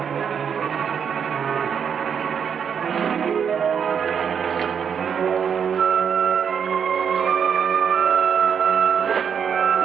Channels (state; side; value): quieter; left; 7.4 dB